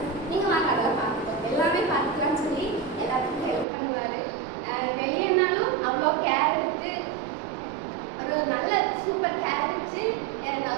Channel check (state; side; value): drops out; left; at 3.7 s